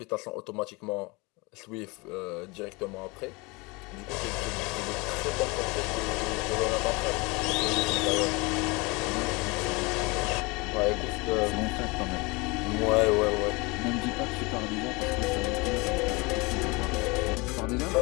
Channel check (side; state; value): right; quieter; 26.4 dB